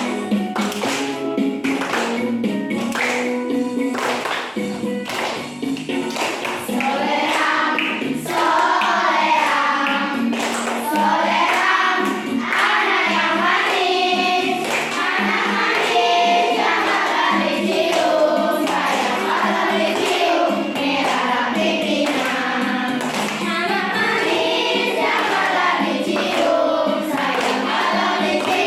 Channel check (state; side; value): identical; both; correlation 1.00